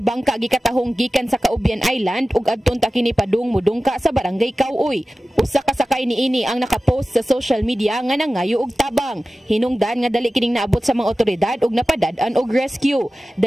gikatahong gikan sa Caubian Island ug adton ta kini padung mudungka sa barangay Kauoy. Usa ka sakay niini ang nakapost sa social media nga nangayo og tabang. Hinungdan nga dali kining naabot sa mga otoridad ug napadad-an og rescue.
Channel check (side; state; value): both; normal; correlation 0.95